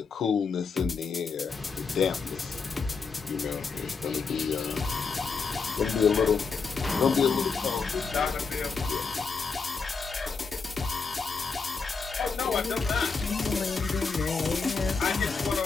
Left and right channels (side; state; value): right; quieter; 5.0 dB